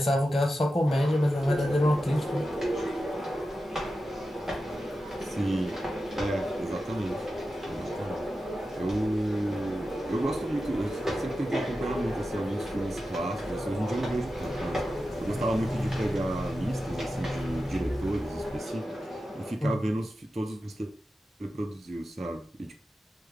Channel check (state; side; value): normal; both; correlation 0.92